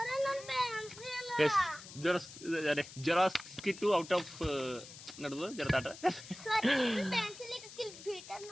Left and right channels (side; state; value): left; noise; hiss, 15 dB below the sound